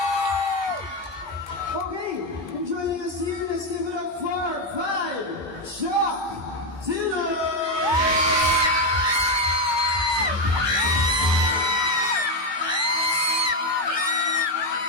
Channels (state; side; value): late; left; 1.2 ms